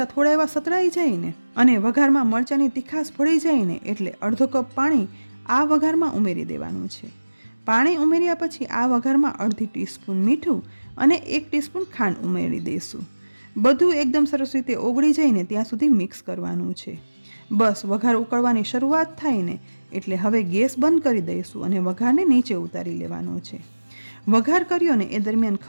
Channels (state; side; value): inverted; both; correlation -1.00